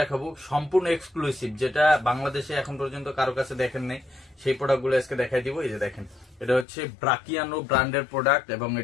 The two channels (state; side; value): drops out; right; at 6.7 s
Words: দেখাবো সম্পূর্ণ এক্সক্লুসিভ, যেটা বাংলাদেশে এখন পর্যন্ত কারো কাছে দেখেন নাই, সেই প্রোডাক্ট গুলো আজকে দেখাই দিব। এই যে দেখেন, এটা হচ্ছে ব্রাকিয়ানো ব্র্যান্ডের প্রোডাক্ট, এবং